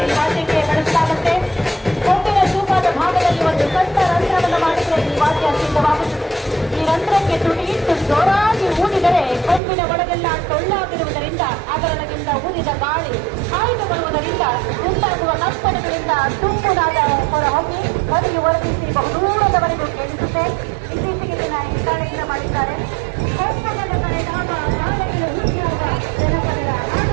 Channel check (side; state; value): left; drops out; at 9.6 s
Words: ಕೊಂಬಿನ ತೂಕದ ಭಾಗದಲ್ಲಿ ಒಂದು ಸಣ್ಣ ರಂಧ್ರವನ್ನು ಮಾಡಿದರೆ ಈ ವಾದ್ಯ ಸಿದ್ಧವಾಗುತ್ತದೆ. ಈ ರಂಧ್ರಕ್ಕೆ ತುಟಿಯಿಟ್ಟು ಜೋರಾಗಿ ಊದಿದರೆ ಕೊಂಬಿನ ಒಳಗೆಲ್ಲ ಟೊಳ್ಳಾಗಿರುವುದರಿಂದ ಅದರೊಳಗಿಂದ ಊದಿದ ಗಾಳಿ ಹಾಯ್ದು ಬರುವುದರಿಂದ ಉಂಟಾಗುವ ಕಂಪನಗಳಿಂದ ತುಂಬುದಾದ ಹೊರಹೊಮ್ಮಿ ಧ್ವನಿಯು ವರ್ಧಿಸಿ ಬಹುದೂರದವರೆಗೂ ಕೇಳಿಸುತ್ತೆ. ಇತ್ತೀಚೆಗೆ ದಿನ ಹಿತ್ತಾಳೆಯಿಂದ ಮಾಡಿದ್ದಾರೆ. ಕೊಂಬನದ ಕರೆದಾಗ ನಾಳೆಗಳು ಹೀಗಾಗ ಜನಪದರ